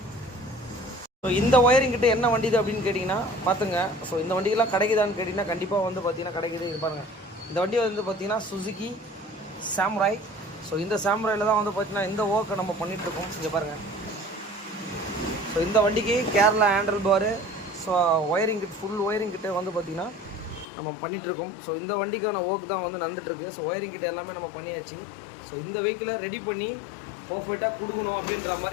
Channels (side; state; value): right; drops out; at 20.7 s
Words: ஸோ இந்த ஒயரிங் கிட்ட என்ன வண்டி இது அப்படின்னு கேட்டிங்கன்னா பார்த்துங்க. ஸோ இந்த வண்டிக்கெல்லாம் கிடைக்குதான்னு கேட்டிங்கன்னா கண்டிப்பாக வந்து பார்த்தீங்கன்னா கிடைக்குது. இது பாருங்கள், இந்த வண்டி வந்து பார்த்தீங்கன்னா சுசுகி சாமுராய். ஸோ இந்த சாமுராயில் தான் வந்து பார்த்தீங்கன்னா இந்த ஒர்க்கை நம்ம பண்ணிகிட்ருக்கோம். இங்கே பாருங்கள். ஸோ இந்த வண்டிக்கு Kerala handle bar, so wiring kit, full wiring கிட்ட வந்து பார்த்திங்கன்னா நம்ம பண்ணிகிட்ருக்கோம். ஸோ இந்த வண்டிக்கான ஒர்க் தான் வந்து நடந்துகிட்ருக்கு. ஸோ ஒயரிங் கிட்ட எல்லாமே நம்ம பண்ணியாச்சு. ஸோ இந்த வெஹிக்கிளை ரெடி பண்ணி பர்ஃபெக்டாக கொடுக்கணும் அப்படின்ற